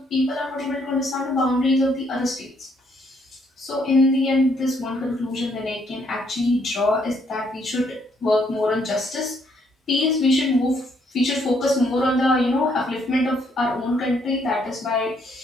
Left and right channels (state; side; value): normal; both; correlation 0.70